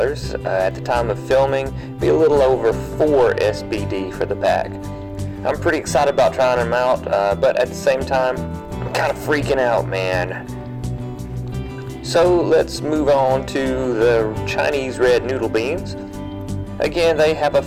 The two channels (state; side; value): identical; both; correlation 1.00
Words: At the time of filming, it'd be a little over 4 SBD for the pack. I'm pretty excited about trying them out, but at the same time, I'm kind of freaking out, man. So let's move on to the Chinese red noodle beans. Again, they have a